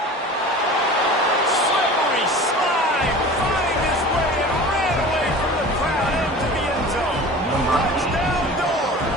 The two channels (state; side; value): normal; both; correlation 0.39